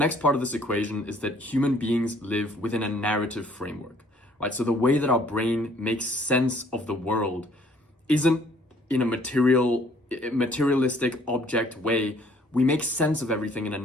part of this equation is that human beings live within a narrative framework, right? So the way that our brain makes sense of the world isn't in a materialistic object way. We make sense of everything in a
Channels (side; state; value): both; normal; correlation 0.60